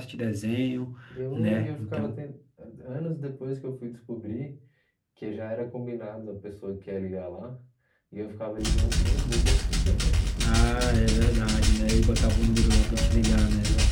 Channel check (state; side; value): identical; both; correlation 1.00